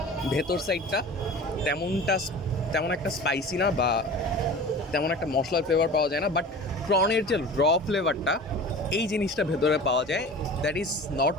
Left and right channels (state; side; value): normal; both; correlation 0.38